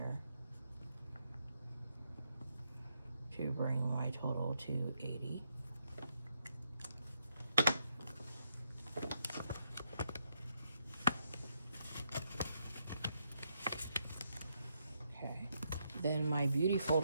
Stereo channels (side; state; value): both; inverted; correlation -0.79